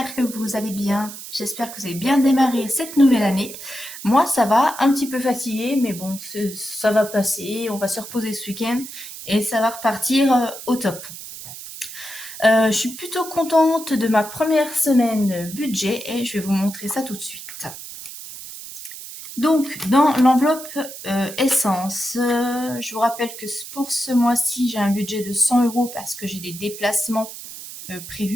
j'espère que vous allez bien. J'espère que vous avez bien démarré cette nouvelle année. Moi, ça va, un petit peu fatiguée, mais bon, ça va passer. On va se reposer ce week-end et ça va repartir au top. Je suis plutôt contente de ma première semaine budget et je vais vous montrer ça tout de suite. Donc, dans l'enveloppe essence, je vous rappelle que pour ce mois-ci, j'ai un budget de 100 € parce que j'ai des déplacements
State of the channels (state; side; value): noise; right; hiss, 12 dB below the sound